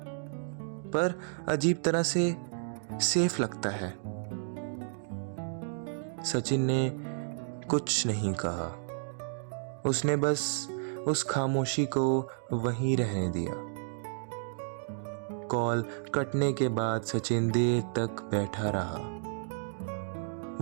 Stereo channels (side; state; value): left; silent; digital silence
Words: पर अजीब तरह से सेफ लगता है। सचिन ने कुछ नहीं कहा। उसने बस उस खामोशी को वहीं रहने दिया। कॉल कटने के बाद सचिन देर तक बैठा रहा।